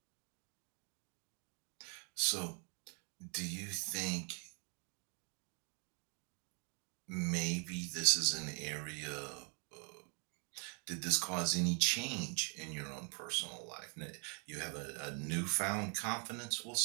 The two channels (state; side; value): quieter; left; 40.0 dB